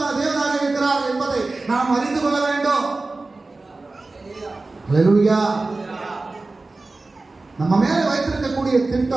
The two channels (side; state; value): left; quieter; 3.4 dB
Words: தேவனாக இருக்கிறார் என்பதை நாம் அறிந்து கொள்ள வேண்டும். ஹல்லேலூயா. நம்ம மேல வைத்திருக்கக்கூடிய